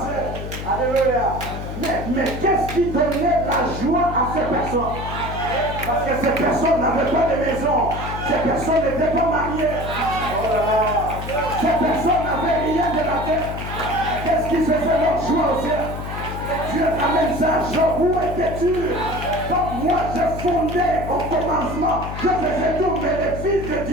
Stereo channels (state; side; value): noise; left; hum, 7 dB below the sound